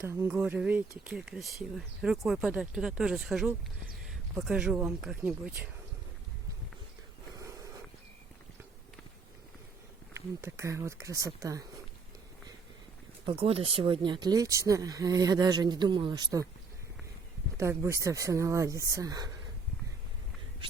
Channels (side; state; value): left; quieter; 4.3 dB